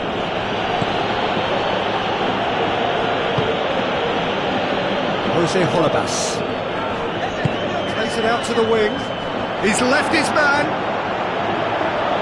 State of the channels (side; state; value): both; identical; correlation 1.00